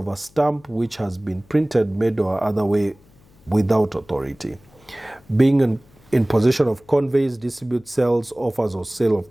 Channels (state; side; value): noise; left; hum, 29 dB below the sound